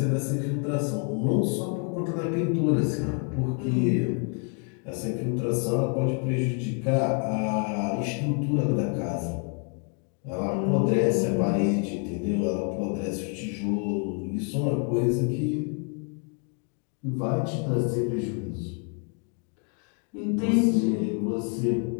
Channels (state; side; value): quieter; right; 39.9 dB